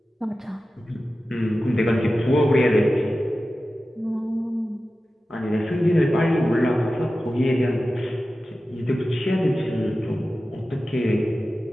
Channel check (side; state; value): both; normal; correlation 0.94